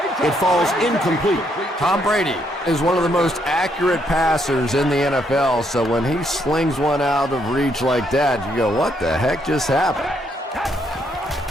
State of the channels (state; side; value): normal; both; correlation 0.73